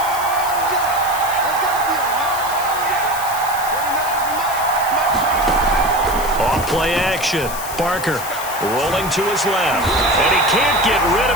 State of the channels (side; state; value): left; noise; hiss, 10 dB below the sound